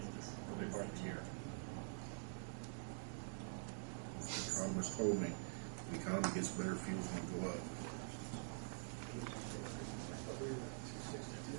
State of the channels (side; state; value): left; silent; digital silence